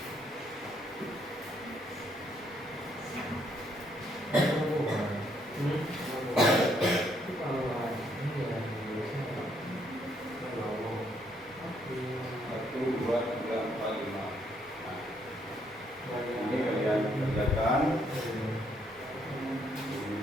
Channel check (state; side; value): normal; both; correlation 0.71